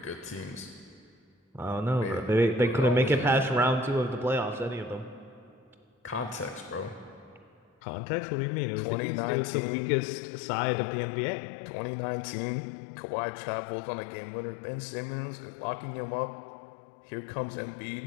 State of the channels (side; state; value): right; drops out; at 7.7 s